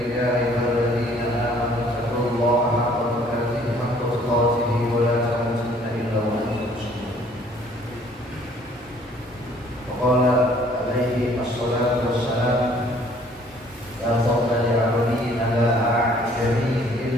ya ayyuhalladzina amanu taqullaha haqqa tuqatih wa la tamutunna illa wa antum muslimun. Wa qala alaihi assalatu wassalam, la fadla li 'abdin ala a'jami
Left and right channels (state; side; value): normal; both; correlation 0.58